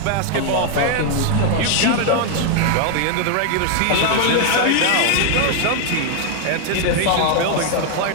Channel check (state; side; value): different; both; correlation 0.00